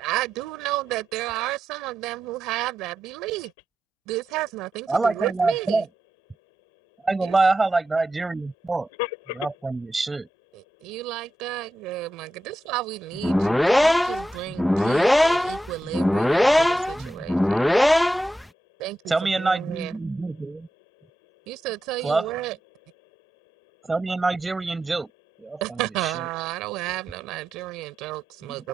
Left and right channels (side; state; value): both; normal; correlation 0.88